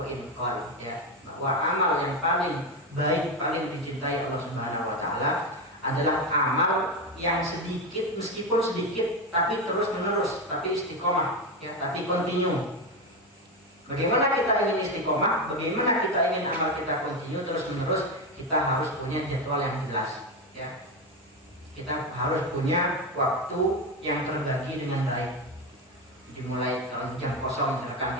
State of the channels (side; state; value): both; normal; correlation 0.13